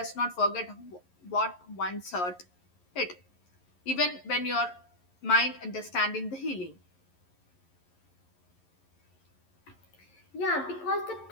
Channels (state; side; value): late; right; 11 ms